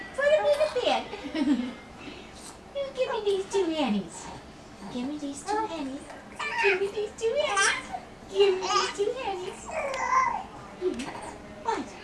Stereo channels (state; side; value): identical; both; correlation 1.00